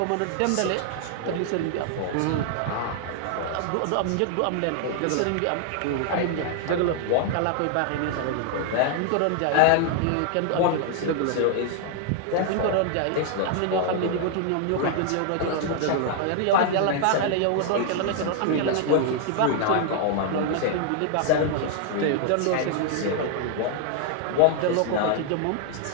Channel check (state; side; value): different; both; correlation 0.00